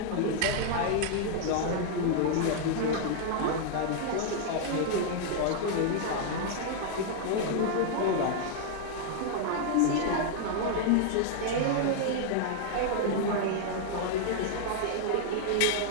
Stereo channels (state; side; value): different; both; correlation -0.01